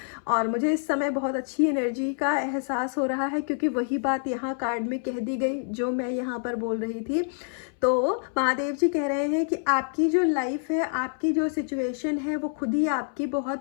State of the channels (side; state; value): right; silent; 60 dB below the other